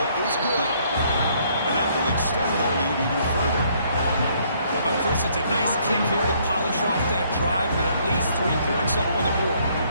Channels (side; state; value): both; inverted; correlation -0.66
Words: is good. And that will extend their lead even further. But Chris, it's a nice kick here to polish off that drive with at least 3 points up on the board.